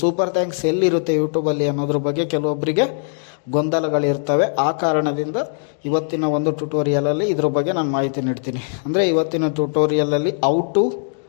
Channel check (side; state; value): right; silent; digital silence